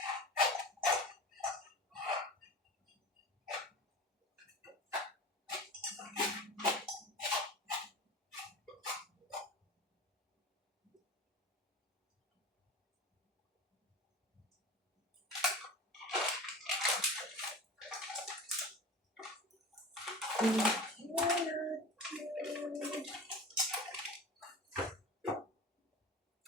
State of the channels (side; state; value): both; normal; correlation 0.33